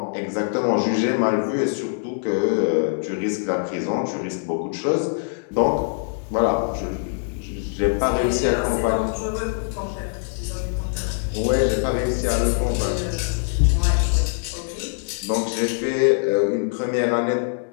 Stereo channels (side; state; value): right; silent; digital silence